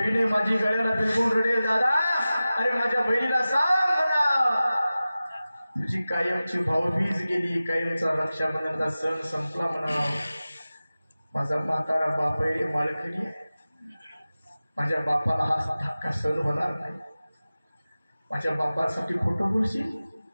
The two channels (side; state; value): both; inverted; correlation -0.96